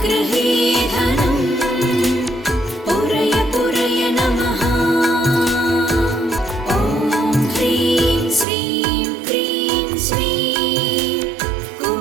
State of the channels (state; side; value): drops out; left; at 8.5 s